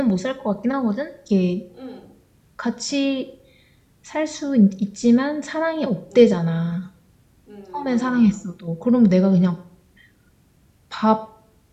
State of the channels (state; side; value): identical; both; correlation 1.00